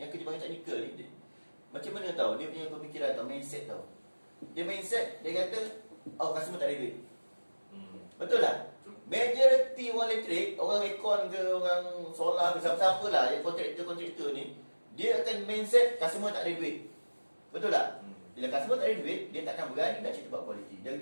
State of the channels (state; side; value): inverted; both; correlation -1.00